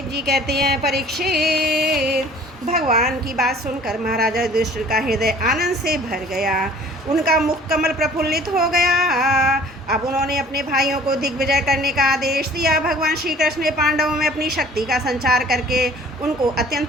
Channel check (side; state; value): both; normal; correlation 0.50